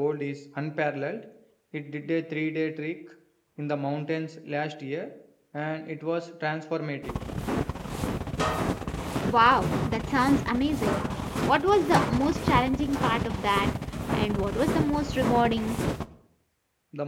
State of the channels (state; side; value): identical; both; correlation 1.00